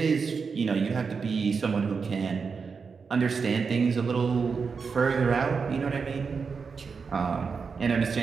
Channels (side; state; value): left; quieter; 5.3 dB